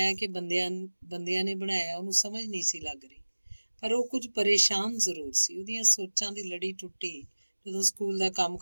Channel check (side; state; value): both; inverted; correlation -1.00